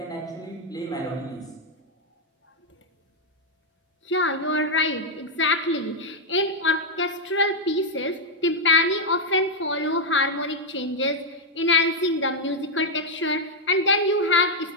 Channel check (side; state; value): both; normal; correlation -0.02